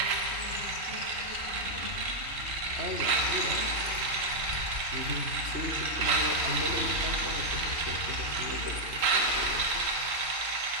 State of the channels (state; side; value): late; left; 3.7 ms